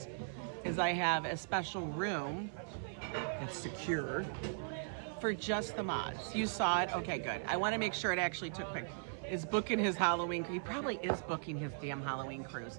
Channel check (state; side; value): silent; left; 52 dB below the other